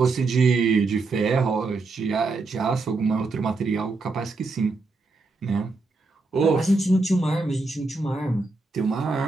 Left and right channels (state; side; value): quieter; left; 3.7 dB